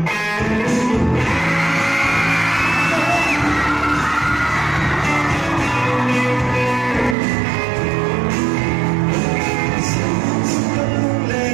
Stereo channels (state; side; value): drops out; left; at 7.2 s